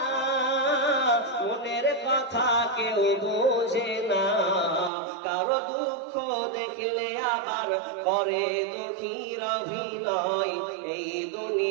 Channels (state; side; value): drops out; left; at 4.9 s